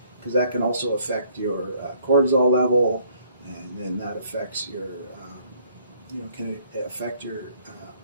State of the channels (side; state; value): both; inverted; correlation -0.64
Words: Because that can also affect your cortisol level, and then that affects your, can affect your